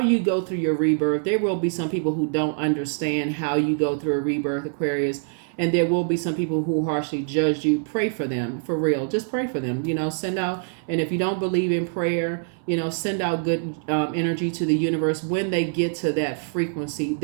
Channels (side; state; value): left; silent; 62 dB below the other